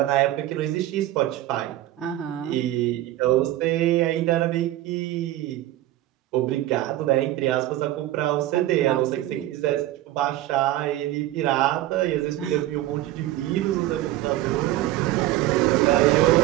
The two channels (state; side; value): quieter; left; 14.9 dB